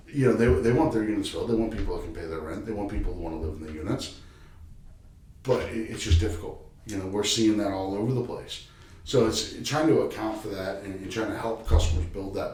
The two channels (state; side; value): identical; both; correlation 1.00